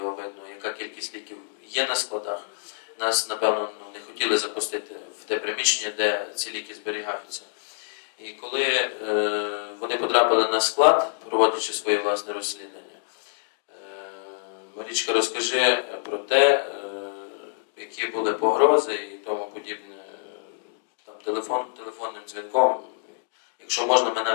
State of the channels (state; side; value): silent; right; digital silence